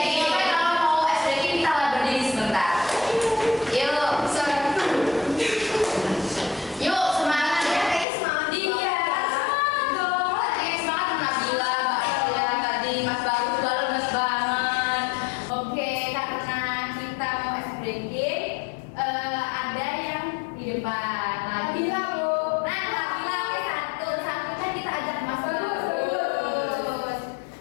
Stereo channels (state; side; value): drops out; right; at 8.1 s